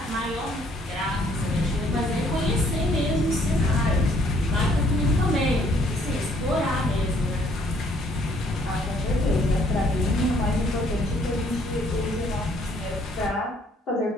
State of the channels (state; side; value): normal; both; correlation 0.64